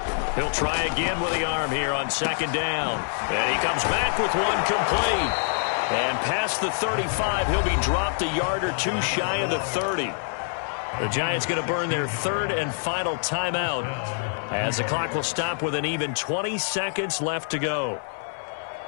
He'll try again with the arm here on second down. And he comes back with one complete. And past the 35, he'll be dropped a yard or two shy of the 30. The Giants going to burn their third and final timeout as the clock will stop with an even 20 seconds left to go.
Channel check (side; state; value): right; silent; 61 dB below the other